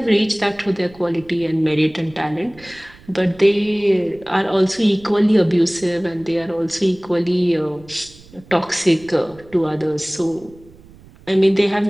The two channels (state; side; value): noise; right; rumble, 24 dB below the sound